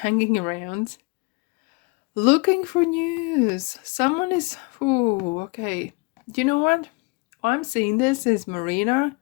around, looking for news. Someone is. Ooh, okay. You know what? I'm seeing this is Marina,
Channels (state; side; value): quieter; right; 29.2 dB